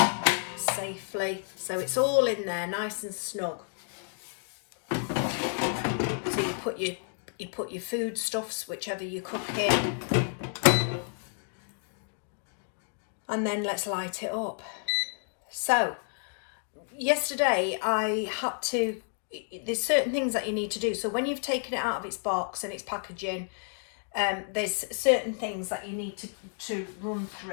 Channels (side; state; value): right; silent; 55 dB below the other